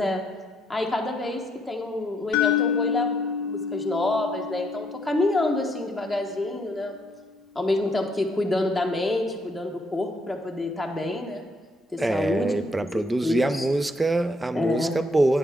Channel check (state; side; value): normal; both; correlation 0.71